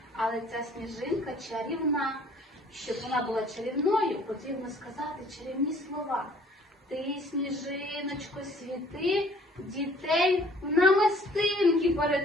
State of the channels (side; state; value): both; normal; correlation 0.56